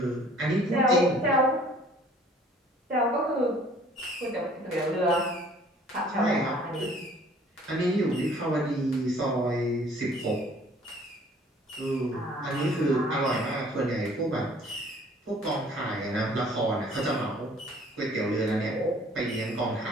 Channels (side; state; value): both; normal; correlation 0.55